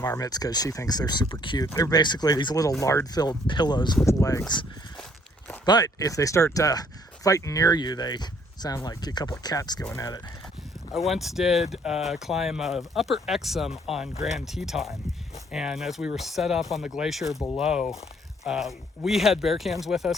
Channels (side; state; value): both; normal; correlation 0.63